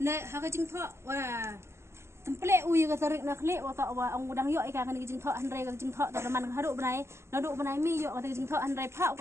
Nek haka jing thak wah template ui ka tarik nak lek wa tak wa ang udang yok ika kan jing thak henrai ka jing thak tak man haduk benai naduk benai mi yok ka jing thak henrai phak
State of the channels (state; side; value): late; left; 0.13 ms